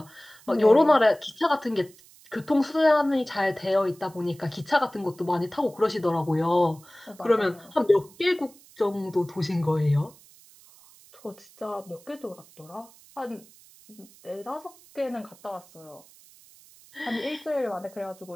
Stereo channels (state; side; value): noise; right; hiss, 25 dB below the sound